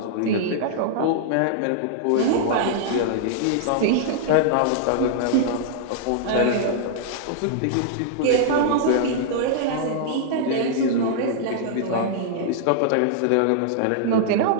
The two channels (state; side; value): different; both; correlation -0.01